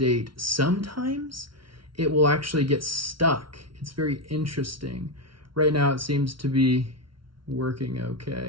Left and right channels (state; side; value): late; left; 0.74 ms